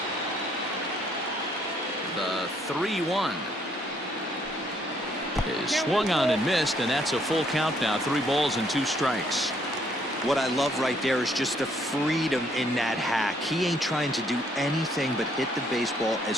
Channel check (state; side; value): normal; both; correlation 0.68